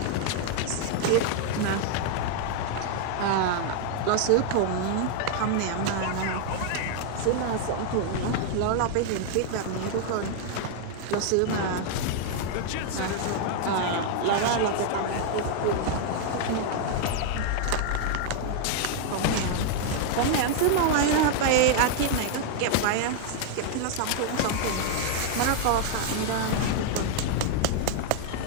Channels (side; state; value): both; different; correlation 0.00